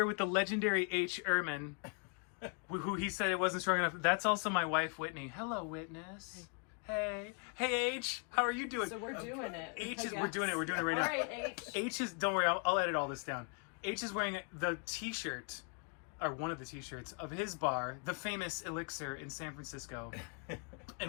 with the legendary Ehrmann, who he said it wasn't strong enough. That's also my wife, Whitney. Hello, Witness. Hey. Hey, H. How are you doing? So we're doing it. We're doing it right now. All right, H. H is, don't worry, I'll edit all this down. H is wearing the t-shirt, or one of the t-shirts, of his bar, the famous Elixir in San Francisco.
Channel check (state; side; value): quieter; right; 37.7 dB